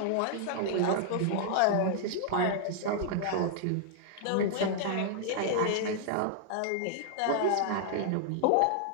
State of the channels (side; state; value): both; different; correlation -0.01